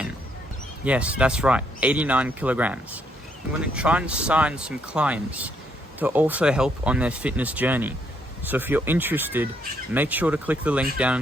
Yes, that's right, 89 kilograms. I'm going to try and sign some clients to also help on their fitness journey. So if you're interested, make sure to click the link down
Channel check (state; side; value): normal; both; correlation 0.73